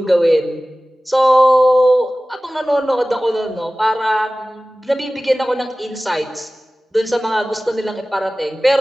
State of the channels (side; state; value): both; normal; correlation 0.97